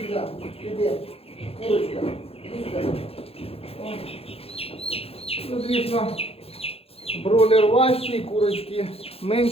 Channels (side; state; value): right; late; 0.28 ms